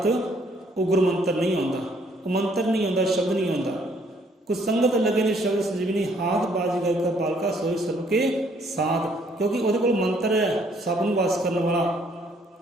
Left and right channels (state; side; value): normal; both; correlation 0.65